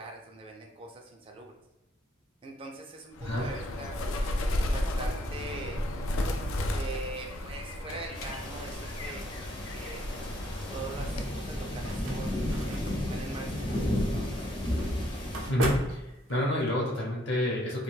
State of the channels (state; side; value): normal; both; correlation 0.69